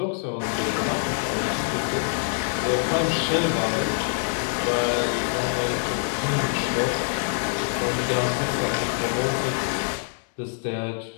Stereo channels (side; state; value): right; silent; 62 dB below the other